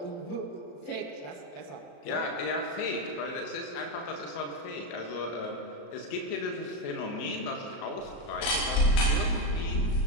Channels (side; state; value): right; late; 35 ms